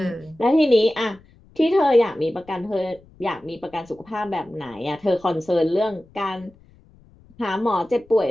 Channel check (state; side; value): noise; left; rumble, 28 dB below the sound